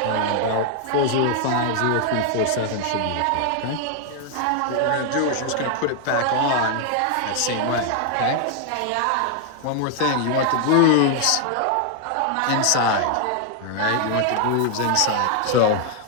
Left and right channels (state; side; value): different; both; correlation 0.00